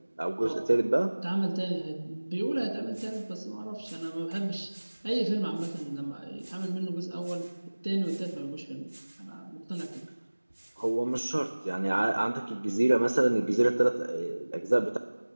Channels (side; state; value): both; inverted; correlation -1.00